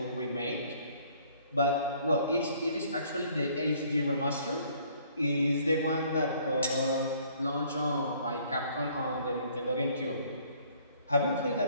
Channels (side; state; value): both; inverted; correlation -0.60